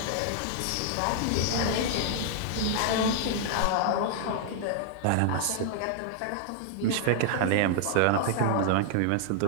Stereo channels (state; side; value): different; both; correlation -0.01